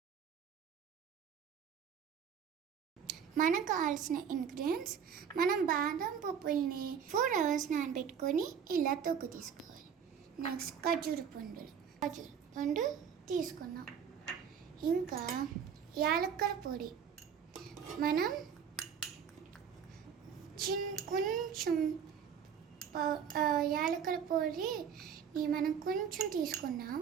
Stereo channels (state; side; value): quieter; left; 7.6 dB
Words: మనకు కావాల్సిన ఇంగ్రీడియంట్స్, మనం బాదం పప్పుల్ని 4 hours నానబెట్టుకొని ఇలా తొక్కు తీసుకోవాలి. నెక్స్ట్ ఖర్జూర పండు తీసుకున్నాం. ఇంకా యాలక్కల పొడి మనం కొంచెం యాలక్కల పొడిని మనం కొంచెం తీసుకున్నాం.